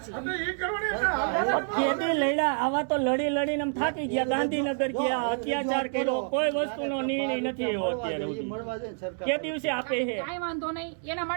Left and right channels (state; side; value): silent; left; 59 dB below the other